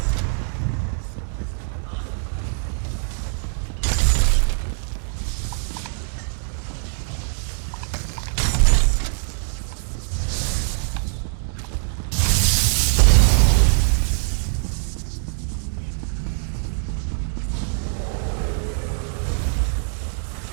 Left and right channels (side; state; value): left; silent; digital silence